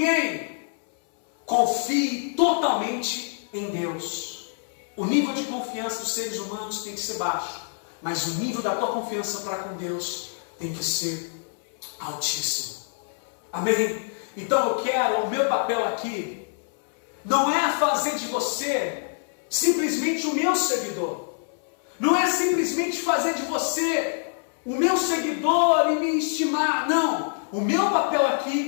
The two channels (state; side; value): silent; right; 61 dB below the other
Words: Confie totalmente em Deus. O nível de confiança dos seres humanos tem que ser baixo, mas o nível da tua confiança para com Deus tem que ser altíssimo. Amém? Então eu quero, o meu papel aqui não é fazer de você simplesmente o meu seguidor. Não é simplesmente fazer de você o meu seguidor e me estimar. Não. O meu papel